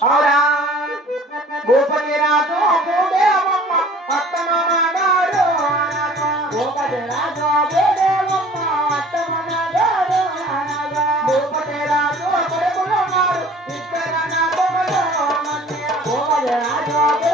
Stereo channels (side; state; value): both; normal; correlation 0.49